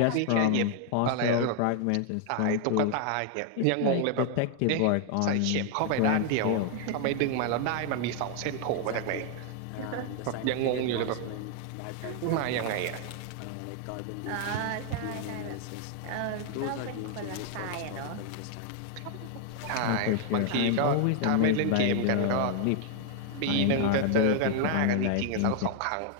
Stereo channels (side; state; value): both; different; correlation 0.00